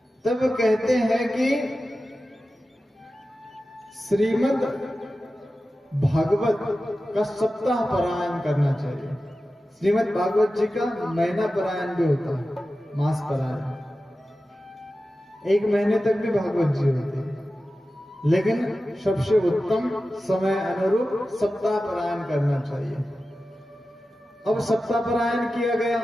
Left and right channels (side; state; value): both; normal; correlation 0.94